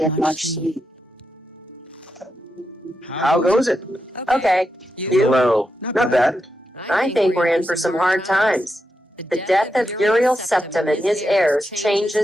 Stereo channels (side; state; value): both; normal; correlation 0.86